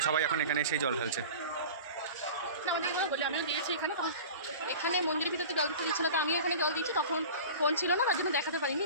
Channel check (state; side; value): inverted; both; correlation -0.37